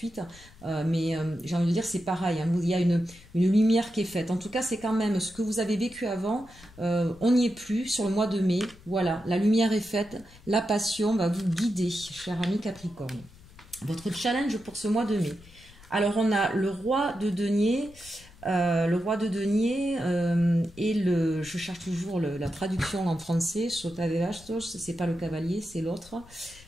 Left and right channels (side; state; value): left; noise; rumble, 23 dB below the sound